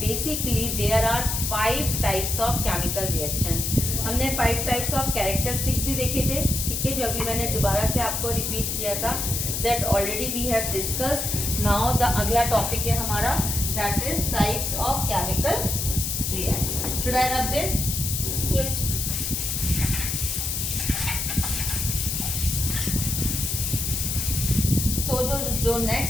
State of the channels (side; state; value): left; noise; hiss, 1 dB below the sound